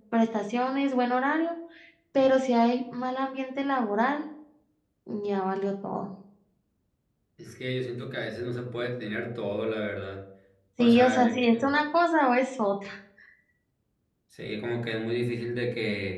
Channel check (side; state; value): both; identical; correlation 1.00